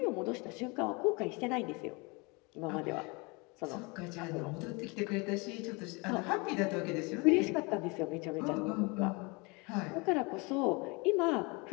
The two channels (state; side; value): quieter; right; 28.2 dB